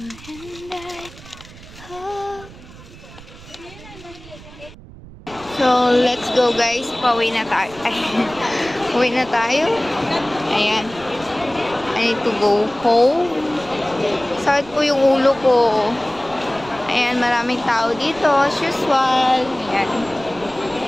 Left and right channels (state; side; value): noise; right; rumble, 19 dB below the sound